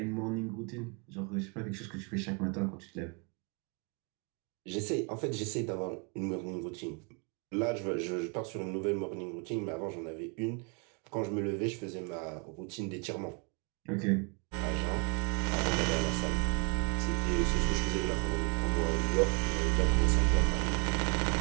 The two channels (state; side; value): quieter; left; 35.3 dB